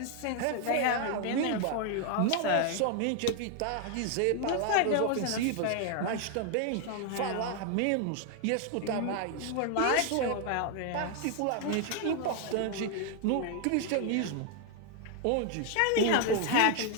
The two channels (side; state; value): both; different; correlation 0.00